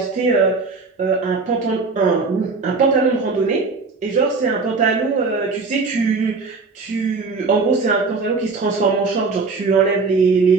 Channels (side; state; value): left; quieter; 4.2 dB